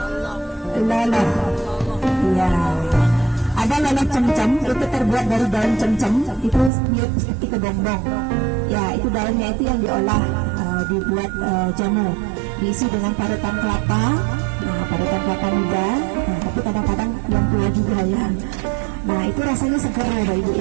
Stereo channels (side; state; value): left; drops out; at 6.7 s